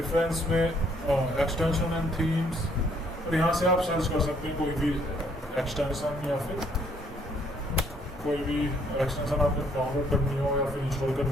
में एक्सटेंशन एंड थीम्स, और यहाँ से आप सर्च कर सकते हैं कोई भी एक्सटेंशन या फिर कोई भी एक्सटेंशन आपको डाउनलोड करनी हो या फिर इंस्टॉल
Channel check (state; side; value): normal; both; correlation 0.66